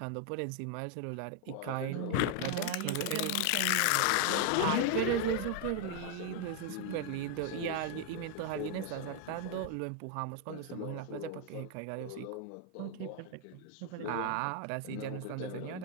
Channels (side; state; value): both; different; correlation 0.00